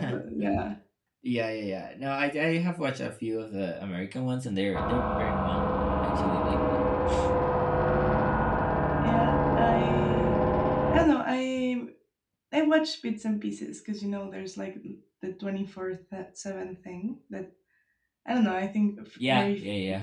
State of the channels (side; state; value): both; identical; correlation 1.00